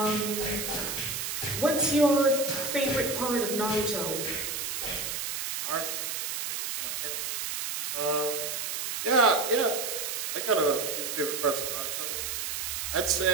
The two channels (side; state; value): right; noise; hiss, 3 dB below the sound